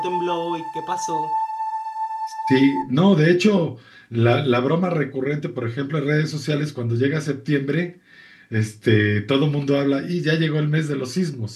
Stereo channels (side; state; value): both; identical; correlation 1.00